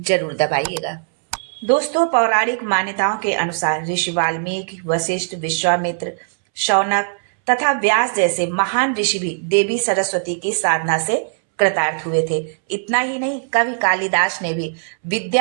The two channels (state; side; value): silent; left; 66 dB below the other